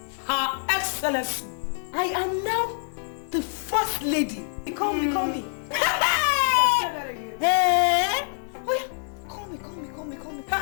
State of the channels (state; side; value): silent; right; 61 dB below the other